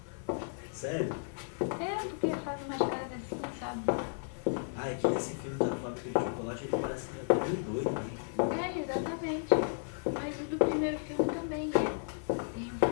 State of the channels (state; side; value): silent; right; 55 dB below the other